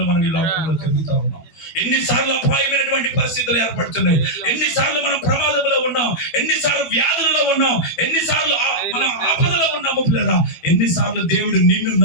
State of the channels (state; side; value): late; right; 12 ms